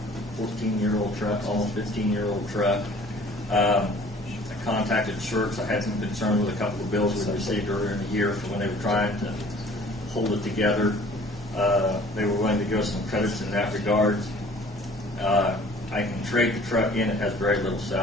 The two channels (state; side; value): normal; both; correlation 0.51